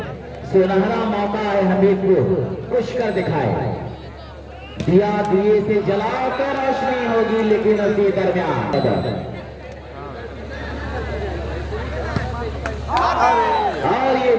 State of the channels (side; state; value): both; identical; correlation 1.00